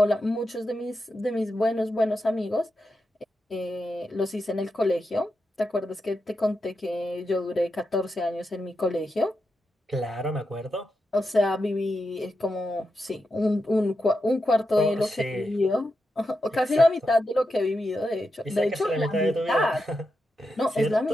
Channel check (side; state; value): both; normal; correlation 0.87